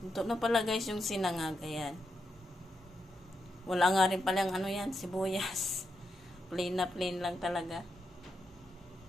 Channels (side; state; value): both; normal; correlation 0.84